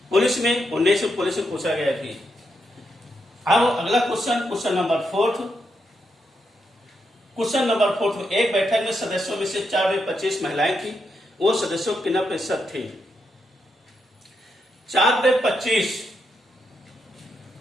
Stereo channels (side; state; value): both; normal; correlation 0.82